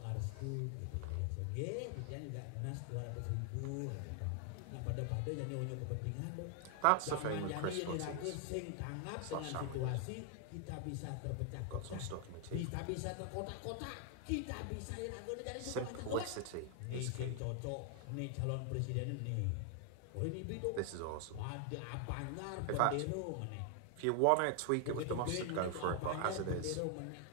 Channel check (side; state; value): both; different; correlation 0.00